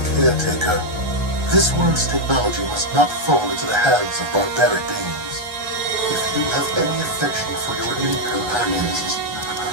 caretaker. This world's technology must not fall into the hands of barbaric beings. If you have any affection for your alien companions,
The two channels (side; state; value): left; late; 1.3 ms